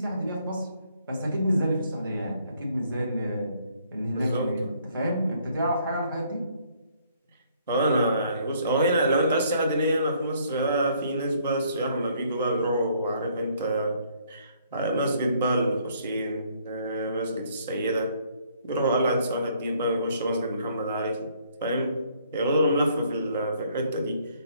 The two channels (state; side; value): inverted; both; correlation -0.65